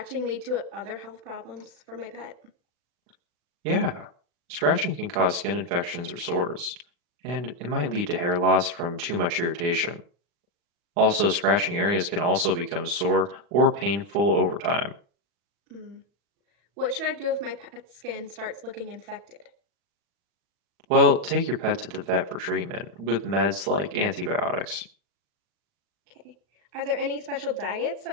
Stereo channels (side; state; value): left; late; 40 ms